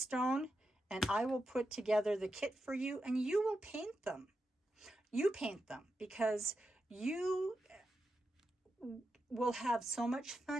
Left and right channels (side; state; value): both; normal; correlation 0.88